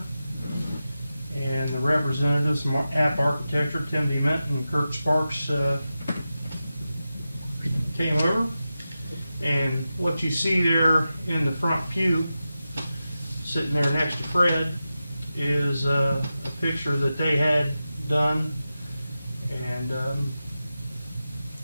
And the representatives from App Architecture, Tim DeMint and Kurt Sparks, came over. And what you see there in the front pew, sitting there next to Fred, is a picture that they had done and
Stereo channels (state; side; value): inverted; both; correlation -0.92